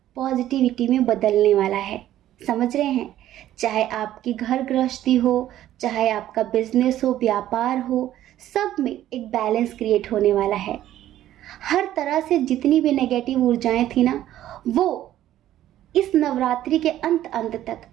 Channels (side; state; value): left; quieter; 12.9 dB